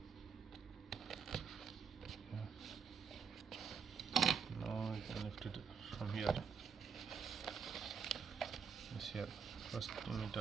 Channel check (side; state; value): left; quieter; 6.3 dB